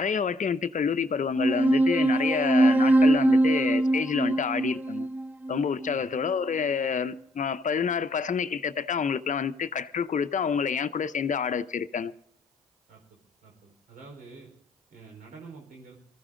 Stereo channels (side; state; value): both; normal; correlation 0.69